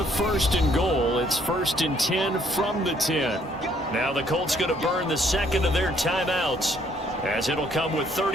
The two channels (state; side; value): normal; both; correlation 0.66